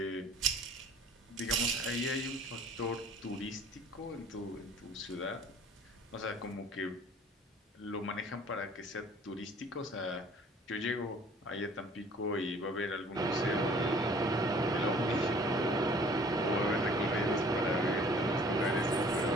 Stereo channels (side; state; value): both; normal; correlation 0.52